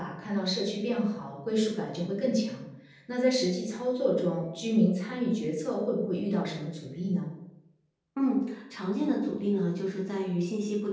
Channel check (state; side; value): identical; both; correlation 1.00